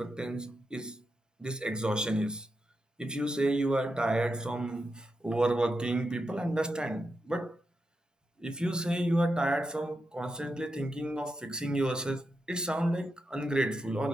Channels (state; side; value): normal; both; correlation 0.87